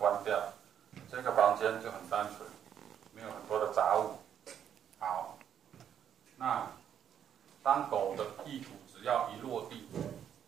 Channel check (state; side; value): quieter; left; 9.2 dB